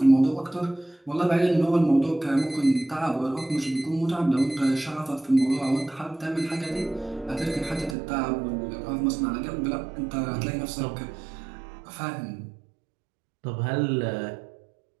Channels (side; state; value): left; drops out; at 8.0 s